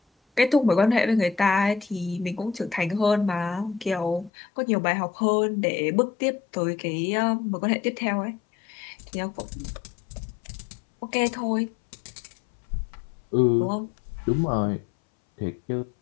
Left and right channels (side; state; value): right; drops out; at 4.3 s